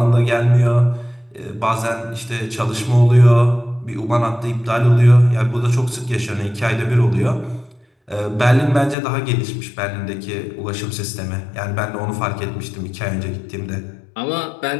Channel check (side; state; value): right; drops out; at 9.0 s